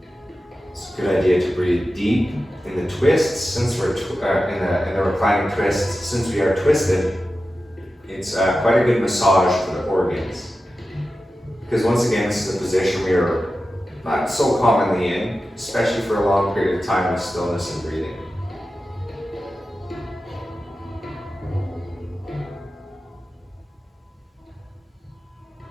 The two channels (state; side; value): normal; both; correlation 0.93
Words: Good idea to breathe deep in the twists. Since we're in the reclining twist, since we are twisted, it's quite a good massage for the organs. Because once again, this is a position we are not so commonly in, especially for a long period of time with stillness and breathing.